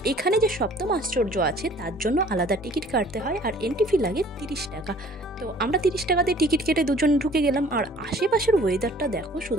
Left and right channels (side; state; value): both; normal; correlation 0.53